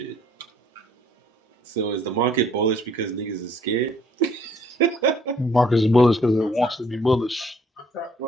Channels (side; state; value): both; normal; correlation 0.62